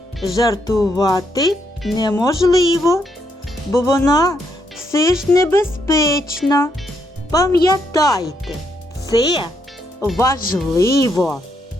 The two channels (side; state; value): both; normal; correlation 0.77